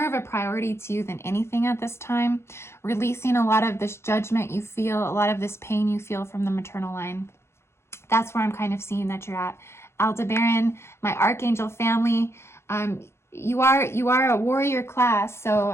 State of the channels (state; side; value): late; right; 0.13 ms